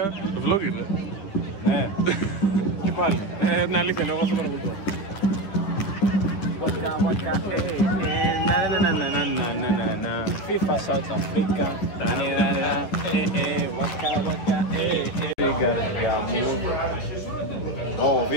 το vlog είναι. Ναι. Και πάλι. Ναι, αλήθεια λέω, εγώ δεν παρακολουθώ. FIFA South Africa.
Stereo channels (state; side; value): late; right; 9.9 ms